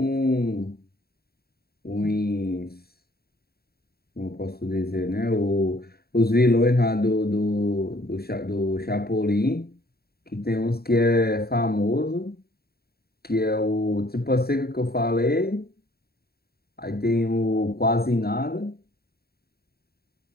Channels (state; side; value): late; right; 0.45 ms